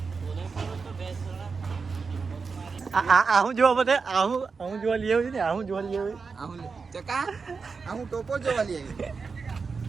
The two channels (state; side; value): quieter; left; 4.9 dB